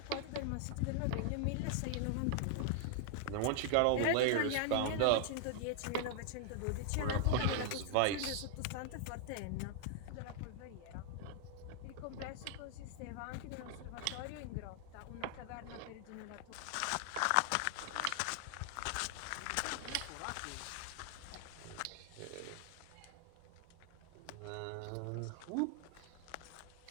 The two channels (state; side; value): different; both; correlation 0.00